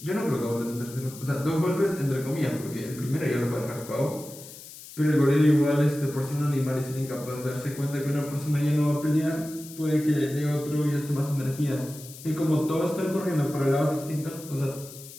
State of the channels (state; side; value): noise; left; hiss, 16 dB below the sound